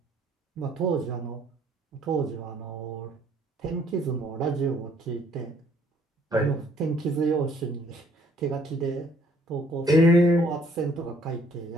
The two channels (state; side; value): normal; both; correlation 0.62